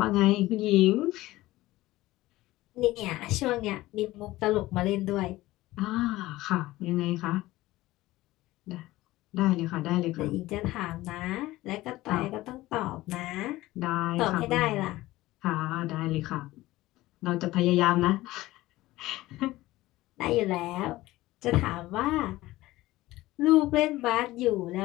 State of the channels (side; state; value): right; quieter; 17.6 dB